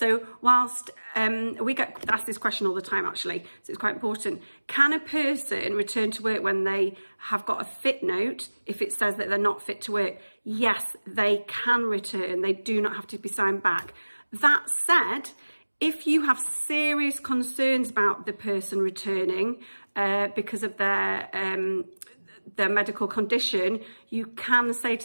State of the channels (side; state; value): both; inverted; correlation -1.00